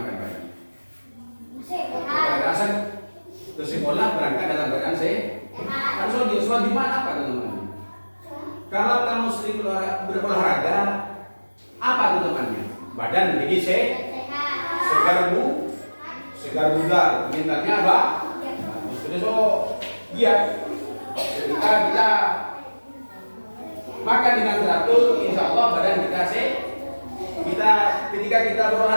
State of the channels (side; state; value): both; inverted; correlation -1.00